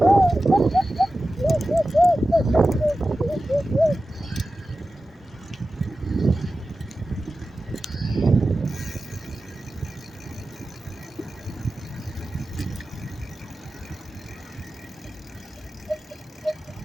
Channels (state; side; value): normal; both; correlation 0.94